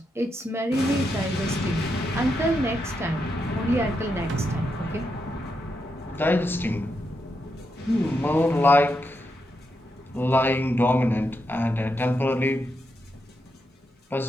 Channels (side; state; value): both; normal; correlation 0.83